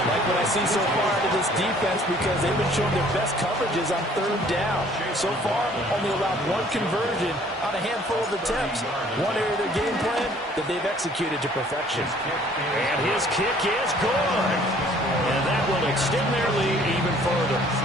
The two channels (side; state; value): both; normal; correlation 0.57